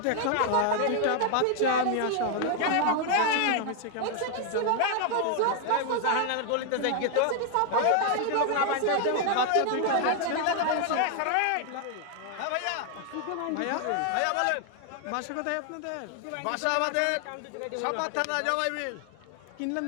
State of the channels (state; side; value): different; both; correlation 0.00